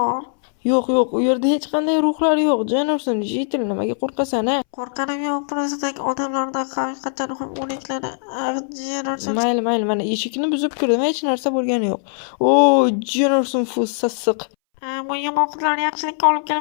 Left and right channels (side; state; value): right; silent; 63 dB below the other